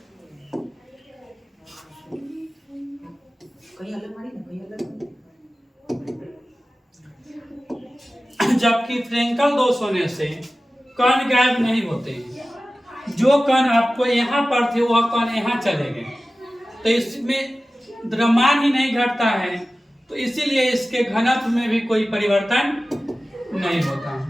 से कण गायब नहीं होते हैं। जो कण आपको यहाँ पर थे वह कण यहाँ चले गए, तो इसमें द्रव्यमान ही नहीं घटता है, तो इसीलिए इसके घनत्व में भी कोई परिवर्तन नहीं होता।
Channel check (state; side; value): normal; both; correlation 0.96